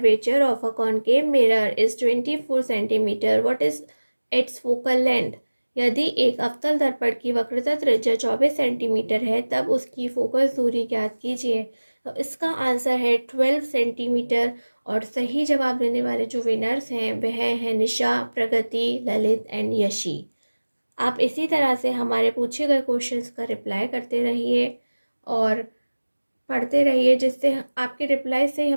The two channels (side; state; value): both; inverted; correlation -1.00